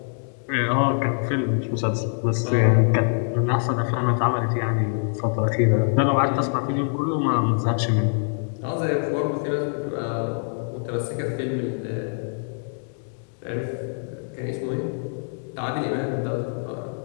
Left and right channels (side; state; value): right; silent; digital silence